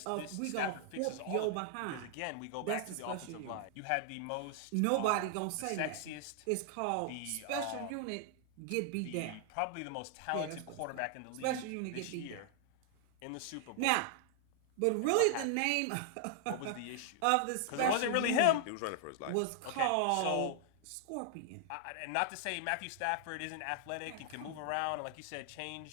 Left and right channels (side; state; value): both; different; correlation 0.00